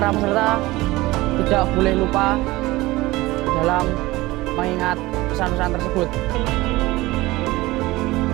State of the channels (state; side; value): quieter; left; 19.5 dB